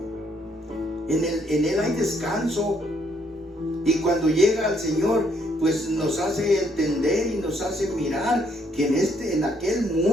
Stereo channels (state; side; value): normal; both; correlation 0.70